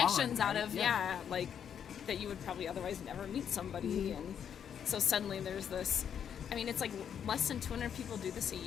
out right? of Yeah. like that you would probably otherwise never meet somebody, and so suddenly there's this. I mean, it's like less than 200 people do this a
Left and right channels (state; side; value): quieter; right; 8.4 dB